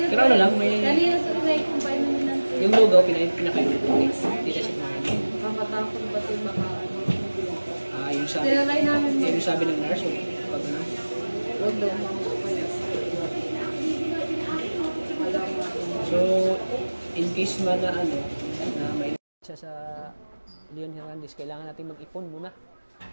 Pero ano lang, may- Kanina sa pinay-combine namin ng tulog. Yung lugaw, pinakain na ito. Hindi na siya kumain. Makatakot ba ito baka ano? Ah, yung sabi. Tinalay namin mo. Yung sabi ng nurse, yung pag ano. Huwag daw makakapaya. So, in case man na ano, na may siya sa Leon Hernandez, kailangan natin mag-ipon muna.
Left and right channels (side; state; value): both; inverted; correlation -1.00